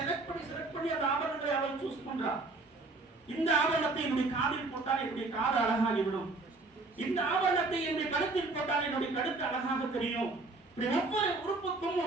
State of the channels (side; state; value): left; quieter; 3.4 dB